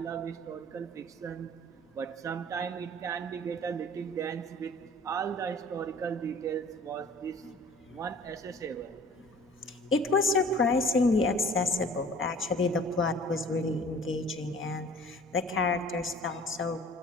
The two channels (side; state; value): both; normal; correlation 0.48